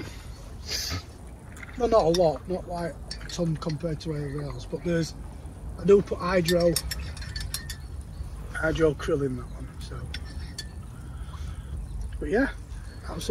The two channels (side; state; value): both; identical; correlation 1.00